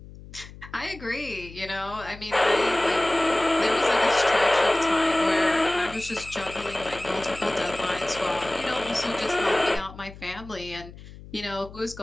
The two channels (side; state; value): left; noise; hum, 17 dB below the sound